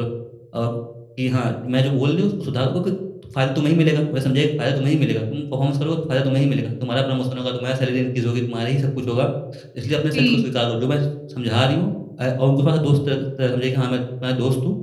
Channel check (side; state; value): both; identical; correlation 1.00